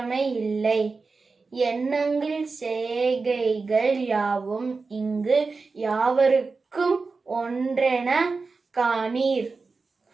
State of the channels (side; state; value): left; quieter; 4.2 dB